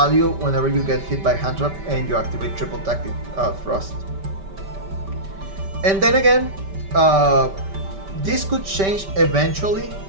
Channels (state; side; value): late; left; 5.1 ms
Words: whenever you get hit by hand trap and you activate Triple Tactic Frost. And then again, this could change eventually,